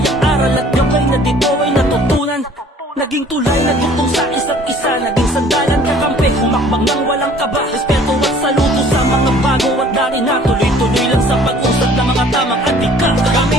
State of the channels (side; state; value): both; normal; correlation 0.53